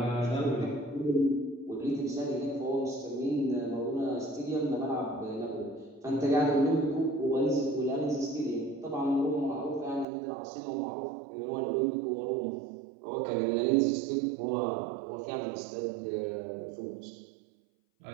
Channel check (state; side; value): drops out; left; at 10.1 s